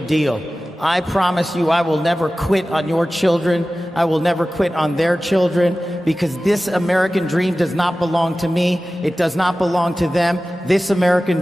deal. I promise you I will never quit on your children. I will never quit on their children, because this American dream does not belong to me. It does not belong to them. This American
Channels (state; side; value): normal; both; correlation 0.96